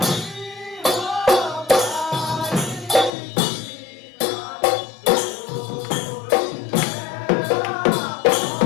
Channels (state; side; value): drops out; right; at 3.1 s